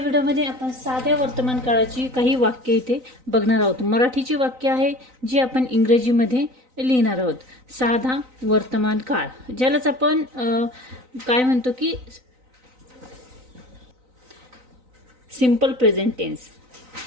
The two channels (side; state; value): left; late; 3.9 ms